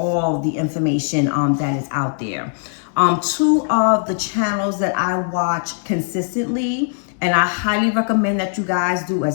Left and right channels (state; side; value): silent; right; 66 dB below the other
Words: the information that is out there. Two of the channels that I watch consistently, and I highly recommend that you guys do